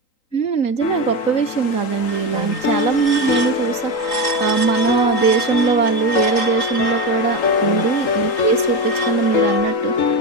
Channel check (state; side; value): late; right; 3.8 ms